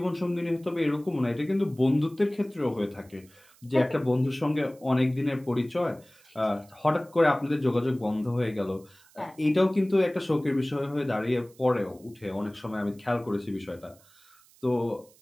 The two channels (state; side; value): noise; right; hiss, 28 dB below the sound